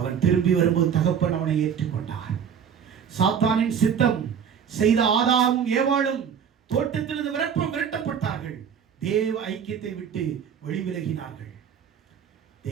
திரும்பி வரும்போது தகப்பன் அவனை ஏற்றுக்கொண்டார். சாத்தானின் சித்தம் செய்த ஆதாமும் ஏவாளும் தோட்டத்திலிருந்து விரட்டப்பட்டார்கள். தேவ ஐக்கியத்தை விட்டு வெளிவிலகினார்கள்.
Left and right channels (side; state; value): left; quieter; 7.7 dB